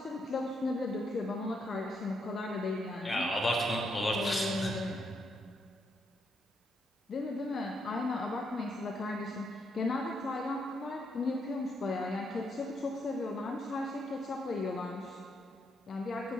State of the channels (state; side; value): normal; both; correlation 0.77